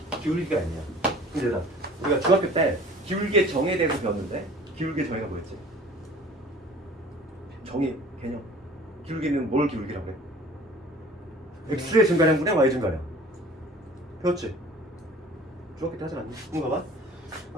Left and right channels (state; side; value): normal; both; correlation 0.47